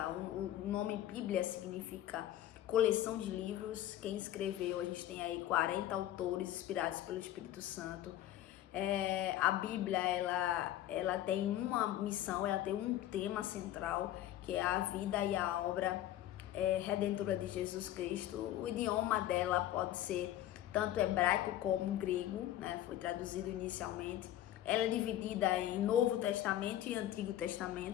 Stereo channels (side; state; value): right; quieter; 13.0 dB